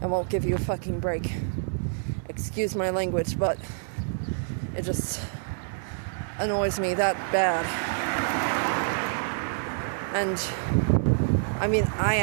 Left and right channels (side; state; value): left; silent; digital silence